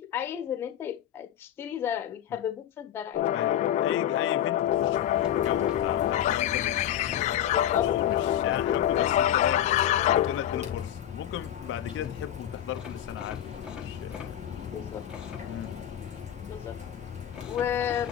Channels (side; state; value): right; quieter; 11.2 dB